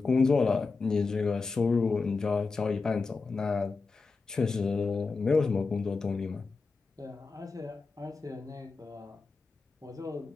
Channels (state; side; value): quieter; right; 4.2 dB